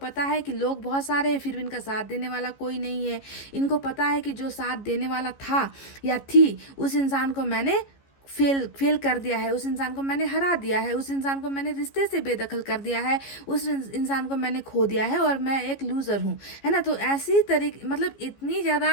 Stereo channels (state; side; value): late; right; 15 ms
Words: है कि लोग बहुत सारे हैं फिर भी इनका साथ देने वाला कोई नहीं है, इनको पता है कि जो साथ देने वाला था या थी उस इंसान को मैंने फेल कर दिया है, उस इंसान को मैंने हरा दिया है, उस इंसान को मैंने रिश्ते से बेदखल कर दिया है, उस इंसान को मैंने खो दिया है और मैं एक लूज़र हूँ, है ना। तो ऐसी तरीके मतलब इतनी